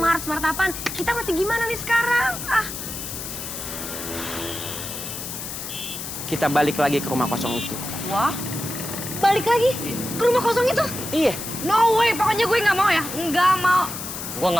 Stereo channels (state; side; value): noise; left; hiss, 7 dB below the sound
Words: Smart apaan? Kita mesti gimana nih sekarang? Kita balik lagi ke rumah kosong itu. Wah, balik lagi ke rumah kosong itu? Iya. No way, pokoknya gue nggak mau ya. Nggak mau. Gua